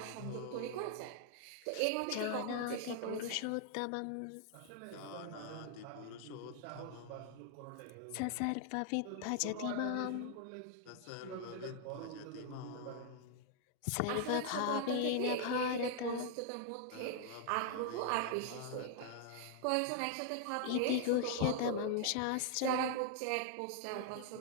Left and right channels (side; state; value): both; different; correlation 0.00